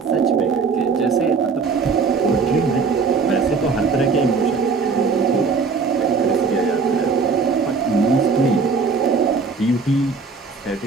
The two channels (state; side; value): quieter; left; 4.9 dB